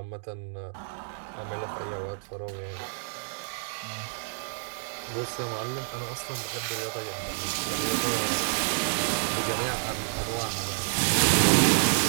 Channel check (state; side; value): silent; left; digital silence